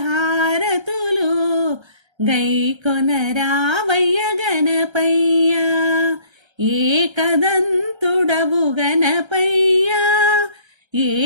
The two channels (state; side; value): late; left; 1.3 ms